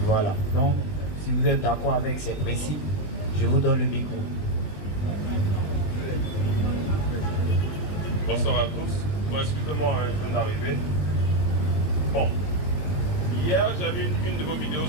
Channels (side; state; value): right; late; 20 ms